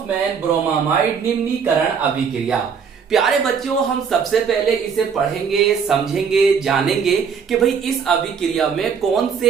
ब्रोमामाइड निम्नीकरण अभिक्रिया। प्यारे बच्चों, हम सबसे पहले इसे पढ़ेंगे, समझेंगे, जानेंगे कि भाई इस अभिक्रिया में कौन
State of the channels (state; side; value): quieter; left; 6.5 dB